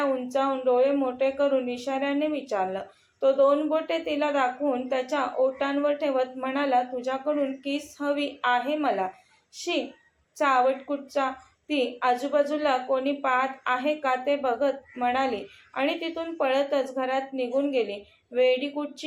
उंचावून डोळे मोठे करून इशाऱ्याने विचारलं. तो दोन बोटे तिला दाखवून त्याच्या ओठांवर ठेवत म्हणाला, तुझ्याकडून किस हवी आहे मला. शी, चावट कुठचा. ती आजूबाजूला कोणी पाहत आहे का ते बघत म्हणाली आणि तिथून पळतच घरात निघून गेली. वेडी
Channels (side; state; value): both; identical; correlation 1.00